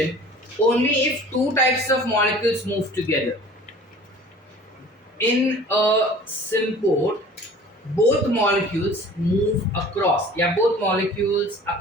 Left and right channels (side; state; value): both; normal; correlation 0.46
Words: only if two types of molecules move together. In a symport, both molecules move across, both molecules